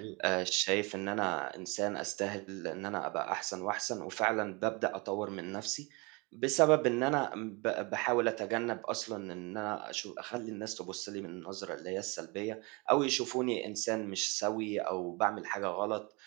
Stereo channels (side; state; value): left; quieter; 28.3 dB